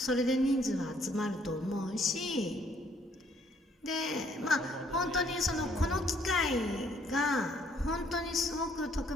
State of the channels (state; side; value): normal; both; correlation 0.65